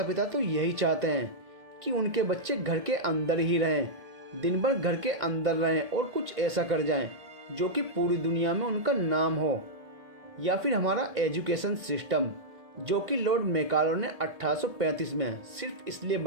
पिता तो यही चाहते हैं कि उनके बच्चे घर के अंदर ही रहें, दिन भर घर के अंदर रहें और कुछ ऐसा कर जाएं जो कि पूरी दुनिया में उनका नाम हो। या फिर हमारा एजुकेशन सिस्टम, जो कि लॉर्ड मैकाले ने 1835 में सिर्फ इसलिए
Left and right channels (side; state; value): left; late; 2.1 ms